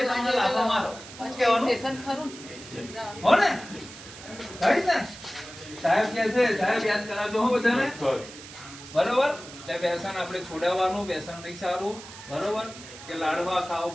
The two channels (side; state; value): right; noise; hiss, 15 dB below the sound